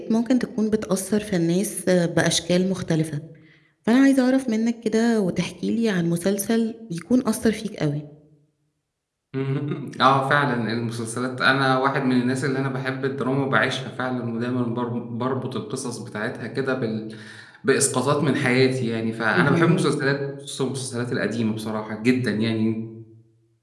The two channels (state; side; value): identical; both; correlation 1.00